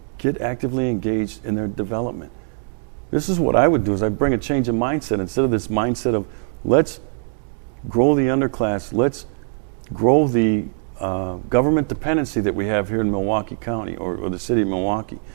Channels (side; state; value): left; silent; 65 dB below the other